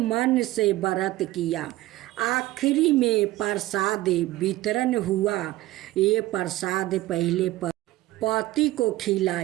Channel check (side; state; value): left; quieter; 17.0 dB